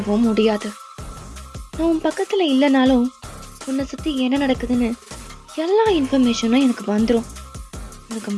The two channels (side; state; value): both; identical; correlation 1.00